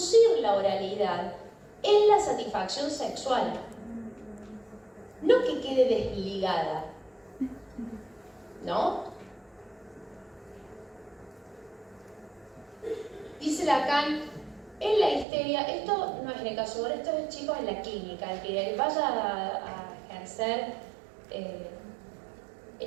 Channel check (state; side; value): drops out; left; at 15.2 s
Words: la oralidad en la satisfacción sexual. No que quede desligada, ¿no? Dice Lacan, en la histeria, esto no es en el caso de Dora, esto es, chicos, en la clínica, el que vaya a ejercer